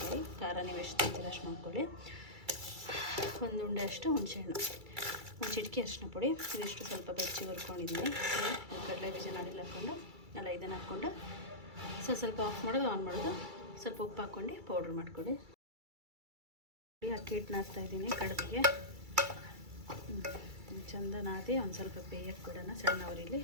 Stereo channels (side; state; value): left; late; 2.3 ms